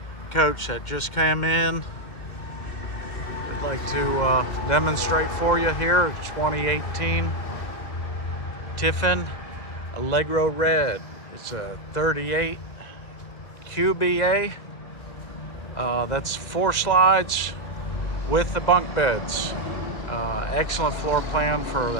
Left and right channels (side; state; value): right; late; 2.0 ms